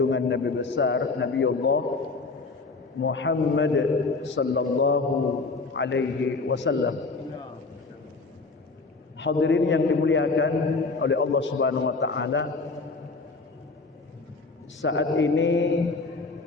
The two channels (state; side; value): quieter; right; 3.9 dB